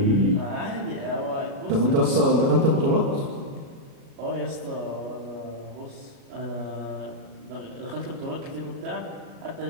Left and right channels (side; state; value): left; late; 37 ms